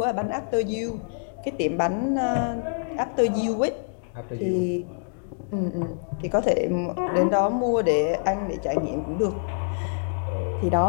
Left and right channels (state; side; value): silent; right; digital silence